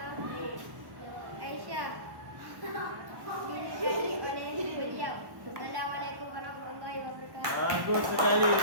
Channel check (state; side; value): late; left; 1.1 ms